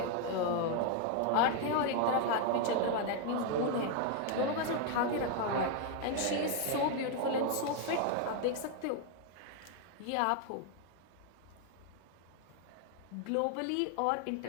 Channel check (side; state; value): both; different; correlation 0.00